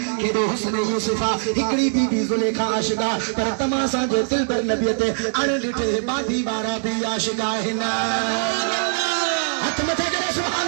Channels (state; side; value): silent; left; digital silence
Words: کہ دو حسن یوسفہ ہکڑی بی بی زلیخا عاشقہ پر تماسا جے دل پر نبیتے اڑ لٹھے باندھی بارا بھی عاشقہ ہنا حتمتے کرے